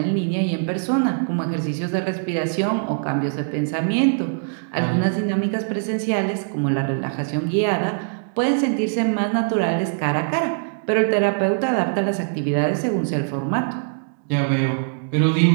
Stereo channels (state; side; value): silent; left; digital silence